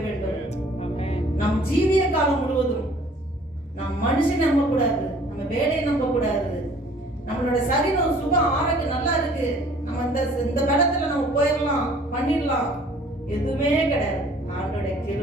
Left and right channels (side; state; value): both; normal; correlation 0.54